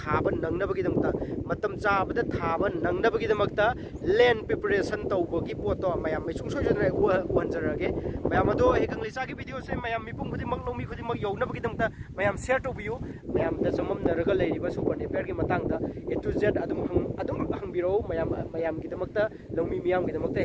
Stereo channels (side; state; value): both; identical; correlation 1.00